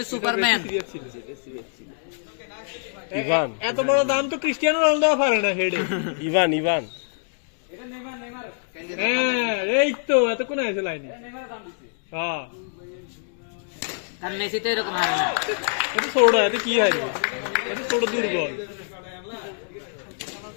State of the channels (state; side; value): silent; right; digital silence